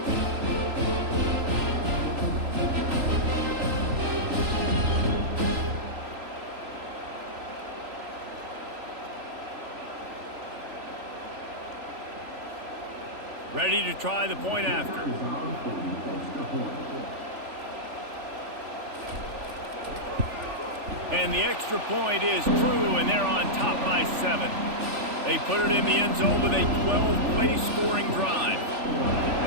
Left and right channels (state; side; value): late; left; 3.4 ms